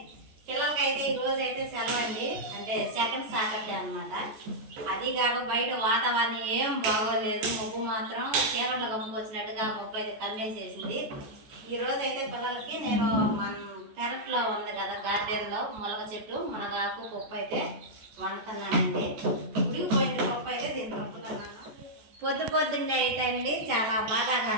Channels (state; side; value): late; left; 14 ms